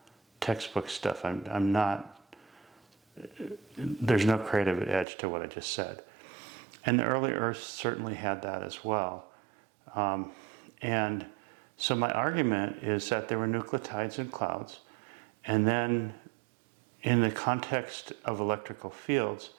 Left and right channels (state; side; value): drops out; left; at 5.1 s